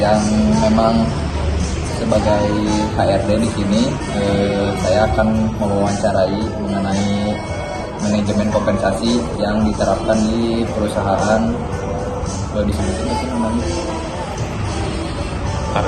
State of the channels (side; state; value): both; identical; correlation 1.00